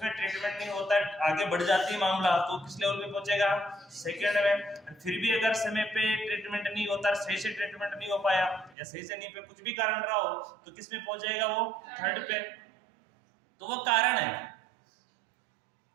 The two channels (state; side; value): drops out; left; at 8.8 s